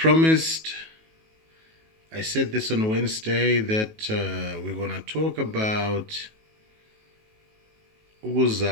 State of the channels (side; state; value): left; late; 19 ms